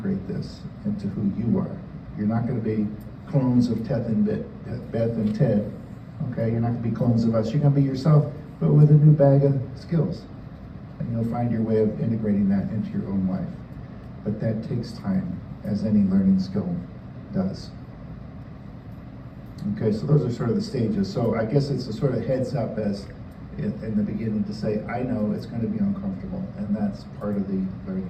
this into who you are. You're not going to be clones of Beth and Ted. Okay, you're not going to be clones of us. You're going to be yourself, but with a new bag of skills. And you'll find your way of integrating that into your own life. But that takes time, as any learning skill does. Okay, so those are sort of the stages. So I guess it's a sort of heads up as in the beginning to say, I know it's going to be uncomfortable, and that's part of the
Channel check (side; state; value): both; identical; correlation 1.00